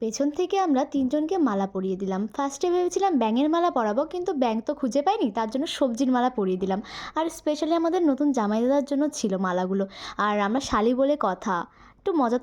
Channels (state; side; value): identical; both; correlation 1.00